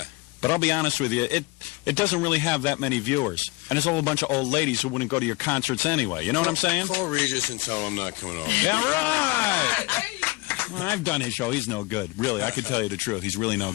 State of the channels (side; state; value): right; quieter; 23.8 dB